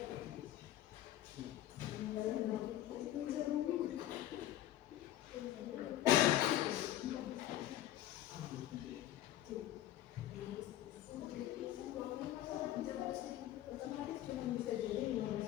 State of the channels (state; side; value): quieter; right; 13.4 dB